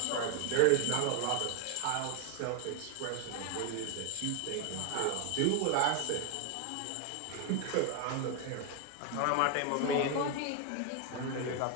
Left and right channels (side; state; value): both; different; correlation 0.01